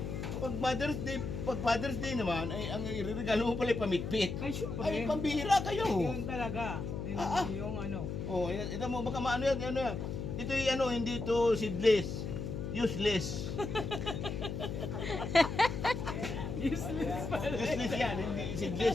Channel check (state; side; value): noise; left; hum, 4 dB below the sound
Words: pag Father's Day naman, ay ang iregalo mo pala ay pamitpit. Ay, syempre. Ay, pambihira kayo. Yun talaga. Yung ano. Oh, ito mo, baka maano yan, ano yan. Ito yung ano, hindi ito seedless. Useless. Useless pala. Useless yan, hindi seedless